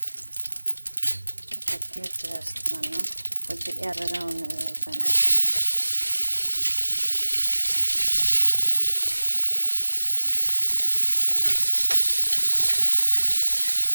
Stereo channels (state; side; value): inverted; both; correlation -1.00